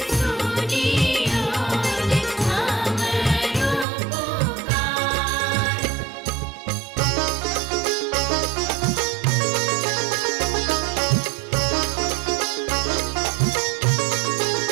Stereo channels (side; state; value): left; drops out; at 3.9 s